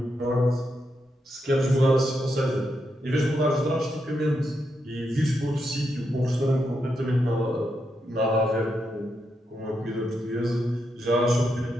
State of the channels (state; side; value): normal; both; correlation 0.83